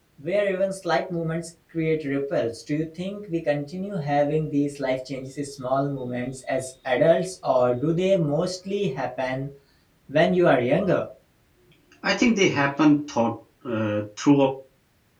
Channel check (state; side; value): identical; both; correlation 1.00